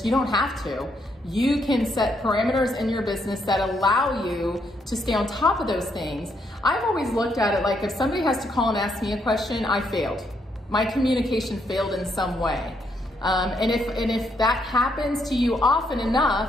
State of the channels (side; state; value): both; normal; correlation 0.75